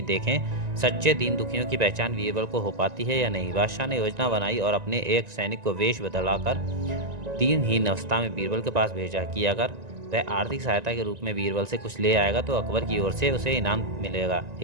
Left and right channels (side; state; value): left; late; 1.9 ms